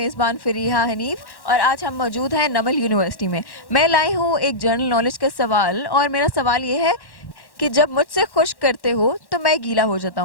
फ़रीहा हनीफ और आज हम मौजूद हैं नमल यूनिवर्सिटी में। मैं लाई हूँ एक जनरल नॉलेज का सवाल और मेरा सवाल ये है कि जब मुझसे खुश करते हो तो मैं गीला हो जाता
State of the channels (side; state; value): right; late; 1.1 ms